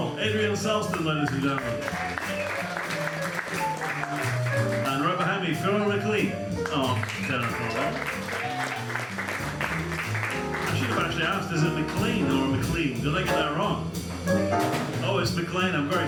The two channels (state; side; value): identical; both; correlation 1.00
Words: Adrian Selston, ladies and gentlemen. And right behind me, Phil McLean on tenor trombone. I should have actually asked, is it McLean or McLean? Did I get that wrong? Oh, it's McLean. I'm very